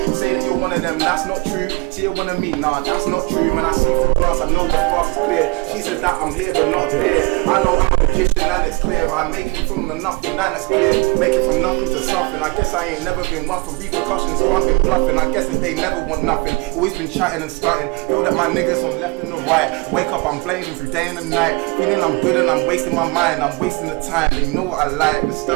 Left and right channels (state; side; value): quieter; left; 26.2 dB